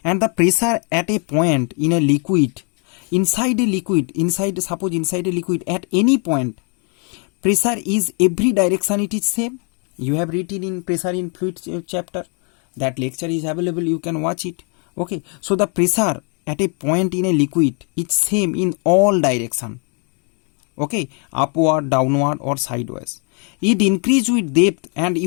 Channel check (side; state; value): right; quieter; 37.5 dB